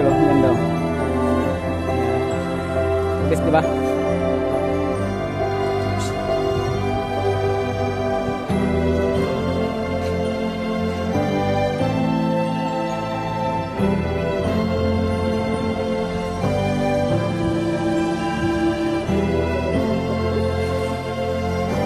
oh. Ganda oh. Best diba?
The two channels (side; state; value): both; identical; correlation 1.00